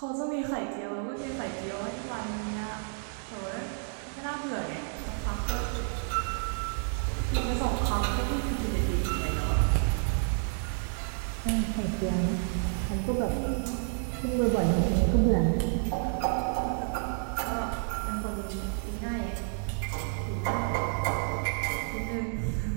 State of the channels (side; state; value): left; silent; 58 dB below the other